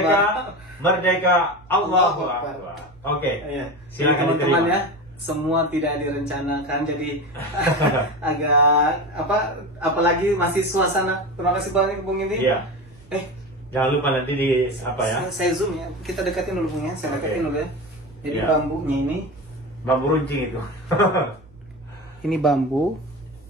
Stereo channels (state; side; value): noise; right; hum, 25 dB below the sound